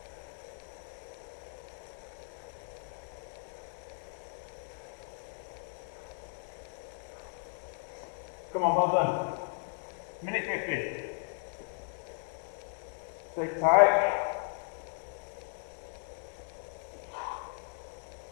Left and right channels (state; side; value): silent; right; 54 dB below the other